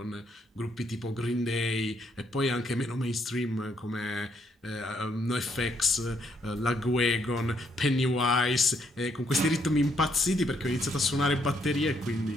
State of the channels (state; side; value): normal; both; correlation 0.73